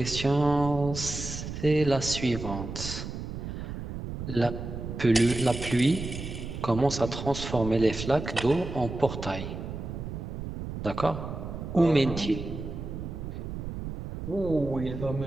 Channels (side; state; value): right; noise; rumble, 7 dB below the sound